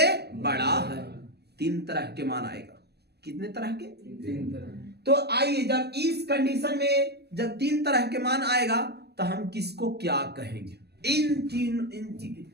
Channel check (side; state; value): left; late; 0.47 ms